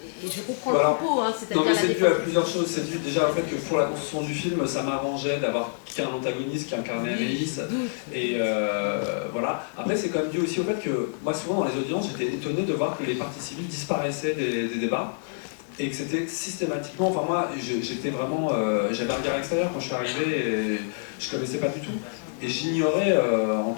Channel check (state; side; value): silent; right; digital silence